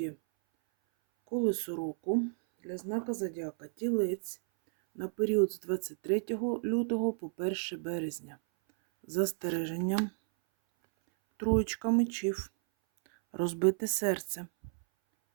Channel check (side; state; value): left; silent; 56 dB below the other